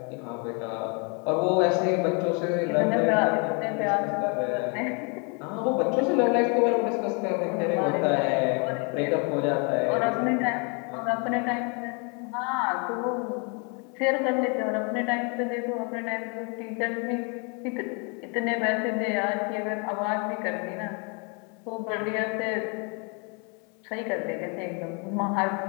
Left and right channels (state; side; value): quieter; right; 35.0 dB